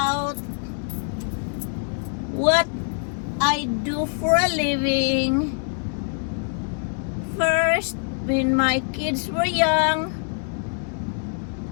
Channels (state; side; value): silent; right; 60 dB below the other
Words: what I do for a living. First, when my kids were young,